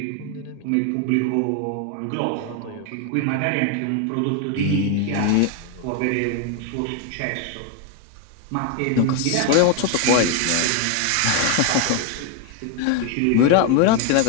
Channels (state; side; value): different; both; correlation 0.01